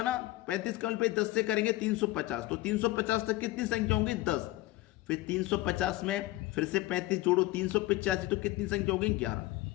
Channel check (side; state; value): right; quieter; 18.1 dB